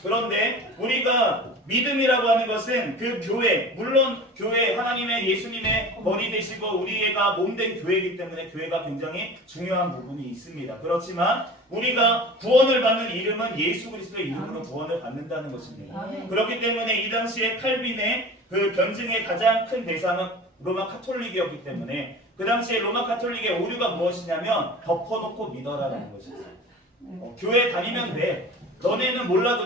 그런데 우리가 믿음이라고 하는 것은 그 교회, 물론 교회 하나님의 예수님의 머리 되시고 우리가 몸된 교회이기 때문에 교회가 굉장히 중요한 부분이 있습니다. 그렇지만 우리가 구원을 받는 이름은 예수 그리스도의 이름으로 구원을 받는다는 것입니다. 그렇기 때문에 이 당시에 칼빈의 그 변증의 가장 큰 대상은 로마 카톨릭이었기 때문에 그 당시에 로마 카톨릭의 오류가 무엇이냐면 덮어놓고 믿어라라는 것이었어요. 교회 다니면 돼. 너네는 몰라도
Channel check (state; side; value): normal; both; correlation 0.38